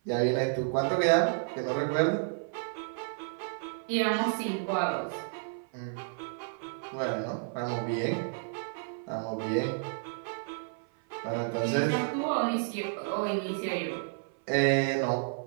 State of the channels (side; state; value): left; silent; 57 dB below the other